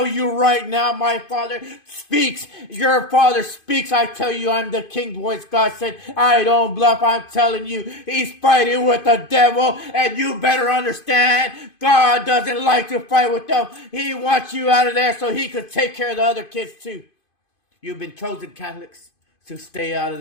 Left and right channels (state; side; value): late; right; 2.5 ms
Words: you right now, my Father speaks. Your Father speaks. I tell you, I'm the King's voice. God said, I don't bluff. I'm telling you, he's fighting with the devil, and you better understand, God doesn't like to fight with them. He wants you out of there so he could take care of the other kids too. You've been chosen, Catholics, to stay out